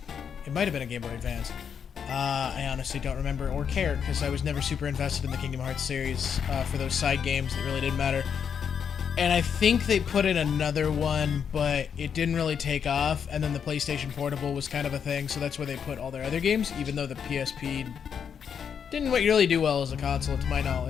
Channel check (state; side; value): quieter; right; 7.4 dB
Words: It might have been a Game Boy Advance. I honestly don't remember or care because I was never super invested in the Kingdom Hearts series for those side games that really didn't matter. And I think they put in another one, but it didn't really take off. And then the PlayStation Portable was kind of a thing, so that's where they put all their other games, even though the PSP didn't really do well as a console, to my